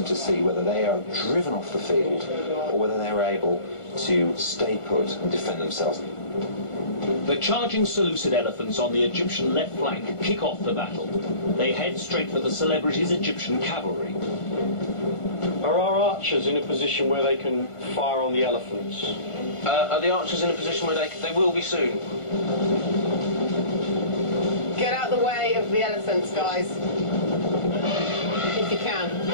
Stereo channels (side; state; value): right; late; 1.5 ms